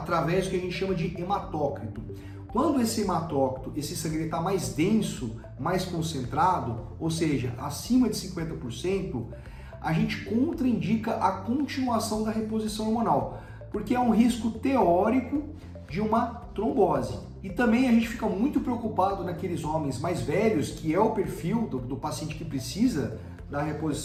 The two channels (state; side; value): identical; both; correlation 1.00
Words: do que a gente chama de hematócrito. Quando esse hematócrito, esse sangue está mais denso, mais concentrado, ou seja, acima de 50%, a gente contraindica a continuação da reposição hormonal, porque é um risco teórico de uma trombose. E também a gente fica muito preocupado naqueles homens mais velhos, que é o perfil do paciente que precisa da